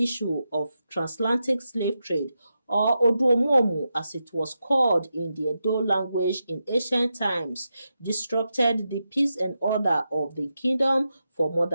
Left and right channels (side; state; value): both; inverted; correlation -0.88